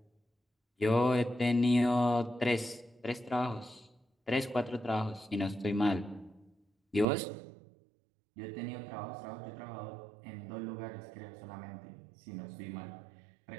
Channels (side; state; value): left; drops out; at 7.1 s